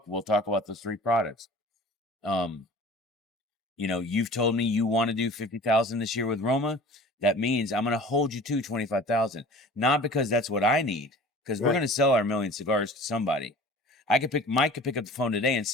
we'll talk about those 3 products. You've told me you want to do 50,000 this year with Roma. That means I'm going to hold you to 25,000, not because that's what I need, because we're Right. going to sell our million cigars to somebody. Mike could pick up the phone today and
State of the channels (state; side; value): normal; both; correlation 0.43